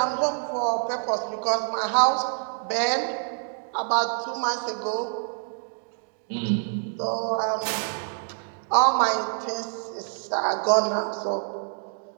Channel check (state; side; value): silent; left; 61 dB below the other